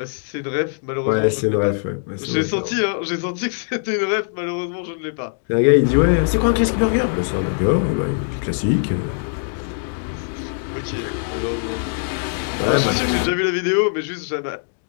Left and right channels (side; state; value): right; silent; digital silence